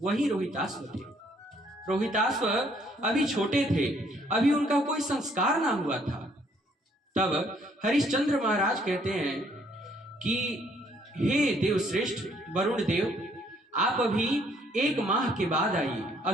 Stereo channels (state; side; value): normal; both; correlation 0.65